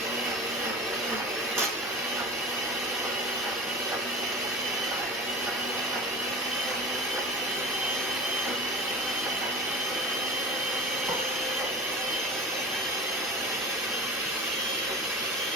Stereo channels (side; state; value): both; normal; correlation 0.32